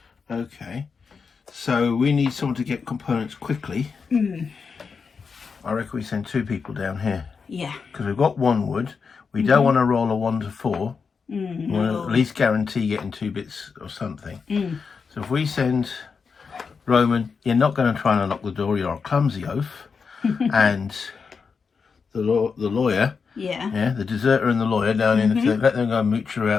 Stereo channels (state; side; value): quieter; right; 5.4 dB